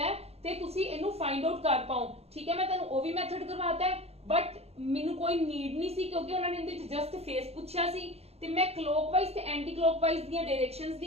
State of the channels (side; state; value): left; late; 0.30 ms